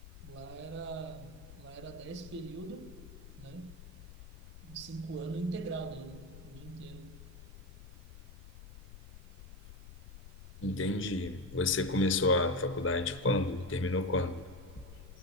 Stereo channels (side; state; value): left; noise; rumble, 16 dB below the sound